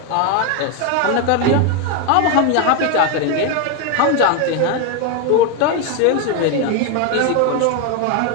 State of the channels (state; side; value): different; both; correlation 0.01